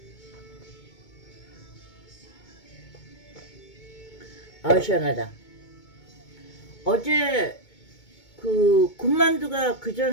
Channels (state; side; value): late; right; 2.2 ms